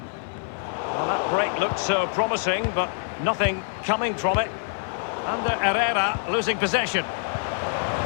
Well, that break looked so promising, but nothing coming from it. And Herrera losing possession.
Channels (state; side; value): silent; right; 61 dB below the other